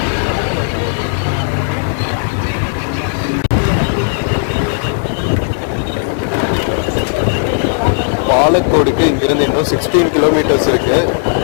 பாலக்கோடுக்கு இங்கிருந்து இன்னும் 16 கிலோமீட்டர்ஸ் இருக்கு.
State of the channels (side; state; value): right; silent; digital silence